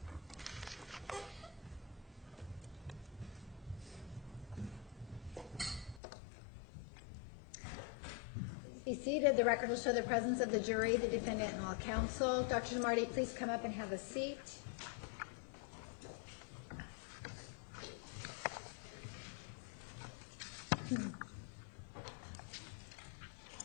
Be seated. The record will show the presence of the jury, the defendant, and all counsel. Dr. DeMarte, please come up and have a seat.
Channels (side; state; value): right; drops out; at 6.0 s